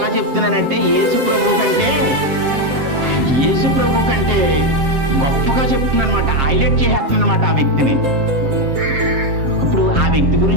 చెప్తున్నానంటే యేసు ప్రభు కంటే గొప్పగా చెప్తున్నాను అనమాట. హైలైట్ చేసేస్తున్నాను అనమాట ఆ వ్యక్తిని. ఇప్పుడు ఆ వ్యక్తి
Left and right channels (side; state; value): left; late; 7.5 ms